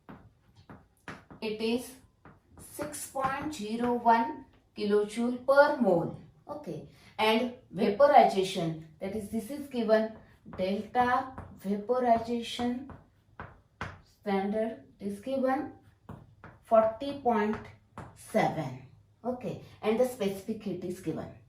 it is 6.01 kilojoule per mole. Okay. And vaporization, that is this is given delta vaporization standard is given 40.7. Okay. And the specific heat is given.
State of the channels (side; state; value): both; identical; correlation 1.00